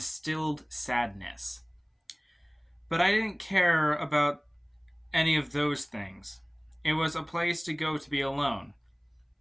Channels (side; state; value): both; identical; correlation 1.00